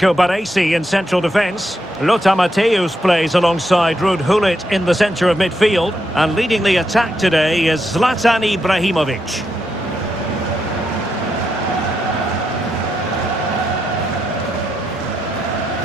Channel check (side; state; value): both; normal; correlation 0.82